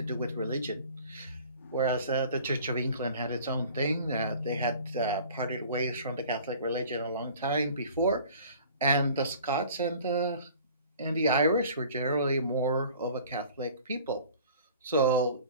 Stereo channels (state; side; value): inverted; both; correlation -0.47